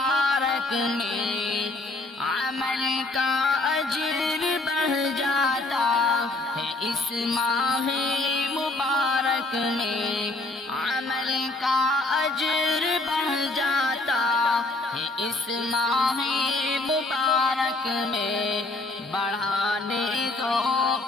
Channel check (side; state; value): right; quieter; 3.0 dB